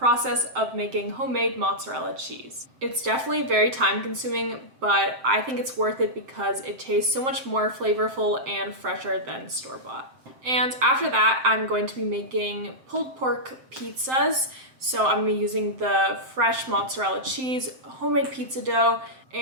of making homemade mozzarella cheese. It's definitely very time consuming, but I think it's worth it because it tastes so much more flavorful and fresher than store-bought. And after that, I'm going to be making pulled pork pizzas. So I'm going to be using the fresh mozzarella cheese, homemade pizza dough,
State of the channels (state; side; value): late; left; 7.7 ms